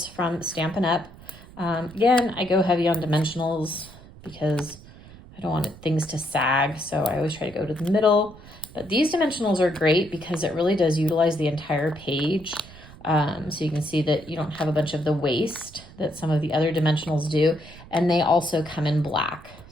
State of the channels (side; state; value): right; noise; rumble, 19 dB below the sound